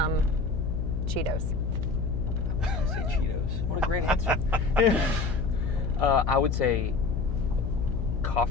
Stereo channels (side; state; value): left; noise; hum, 2 dB below the sound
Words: Cheetos. I was going to say Cheetos. What a great answer. I would say